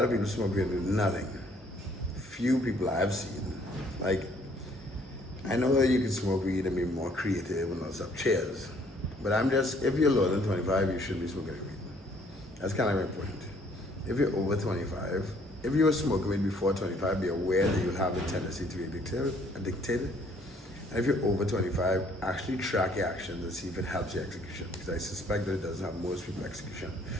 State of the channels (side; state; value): both; normal; correlation 0.62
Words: of people smoke weed and do nothing. Few people I've seen. Like, I know that you can smoke weed and be more creative and all stuff. Cheers. But if you're lower than 25, you shouldn't be smoking weed. That's kind of my point. If you're over 25, if you were smoking weed before 25, be aware that you'll have a tendency to be addicted. And if you're over 25, actually track your actions and see if it helps your execution, because I suspect that it doesn't help most people execution.